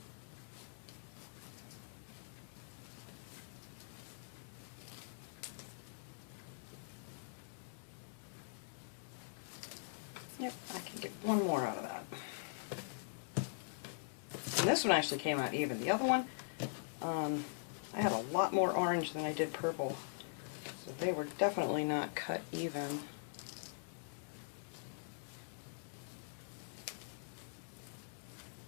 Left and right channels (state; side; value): silent; right; digital silence